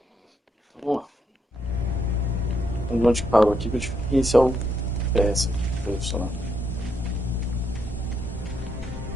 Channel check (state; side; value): normal; both; correlation 0.77